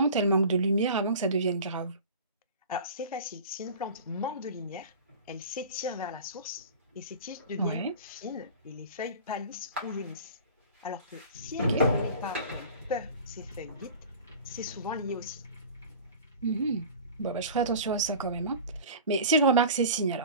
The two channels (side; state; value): both; inverted; correlation -0.38